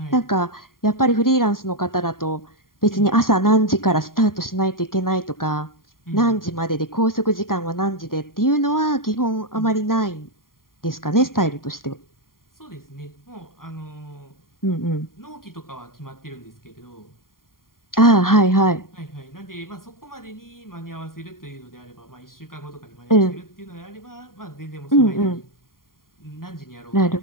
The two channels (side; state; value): right; late; 0.91 ms